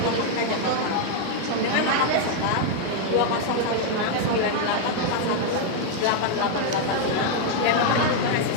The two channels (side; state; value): both; different; correlation 0.00